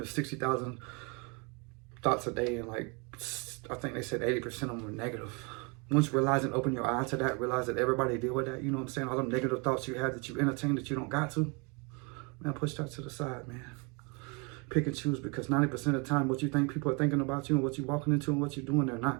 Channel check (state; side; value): quieter; left; 31.8 dB